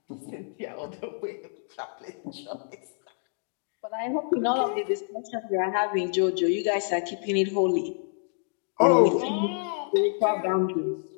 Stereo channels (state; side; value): silent; right; digital silence